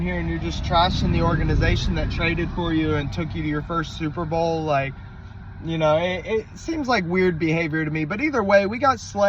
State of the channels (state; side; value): identical; both; correlation 1.00